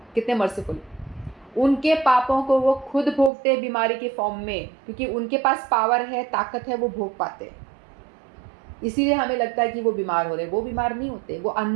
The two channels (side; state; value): left; drops out; at 3.3 s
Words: कितने मर्सीफुल। उनके पापों को वो खुद भोगते हैं बीमारी के फॉर्म में, क्योंकि उनके पास पावर है, ताकत है, वो भोग पाते हैं। इसीलिए हमें लगता है कि वो बीमार हो रहे हैं, वो बीमार नहीं होते। वो